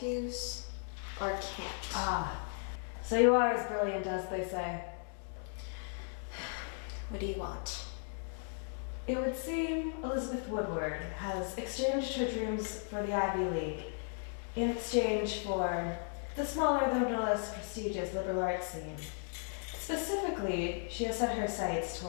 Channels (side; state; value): right; silent; 54 dB below the other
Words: or can't? Ah, so you are as brilliant as they say. What do you want? It would seem Elizabeth Woodward has exchanged her dreams for the Ivy League in exchange for the smaller though no less prestigious liberal arts scene. Specifically, she has set her sights